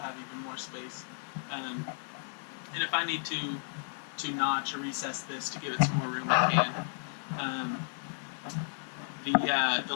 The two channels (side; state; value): right; silent; 56 dB below the other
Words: have even more space. And if I need to notch or recess this to give it some more room, I can. The